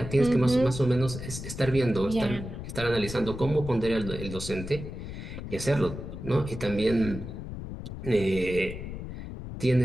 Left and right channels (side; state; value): left; noise; rumble, 8 dB below the sound